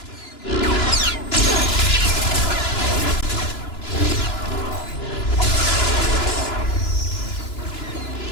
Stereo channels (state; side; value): late; right; 2.9 ms